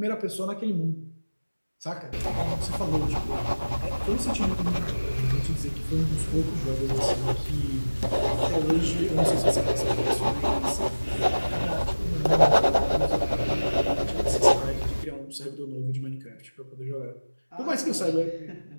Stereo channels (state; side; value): inverted; both; correlation -1.00